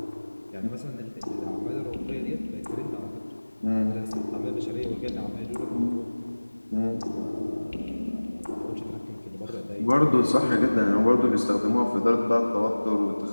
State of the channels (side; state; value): both; inverted; correlation -1.00